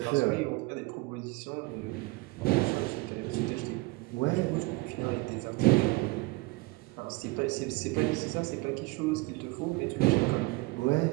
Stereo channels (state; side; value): quieter; left; 23.4 dB